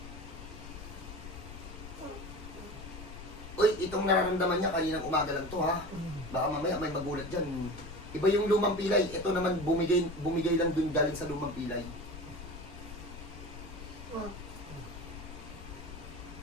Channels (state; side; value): noise; left; rumble, 12 dB below the sound